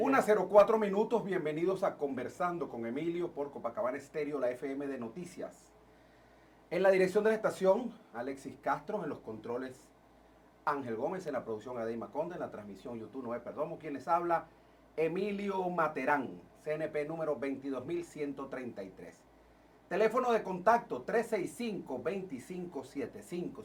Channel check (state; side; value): identical; both; correlation 1.00